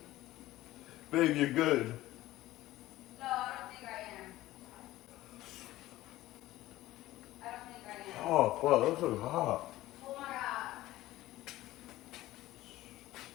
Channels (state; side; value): quieter; right; 16.4 dB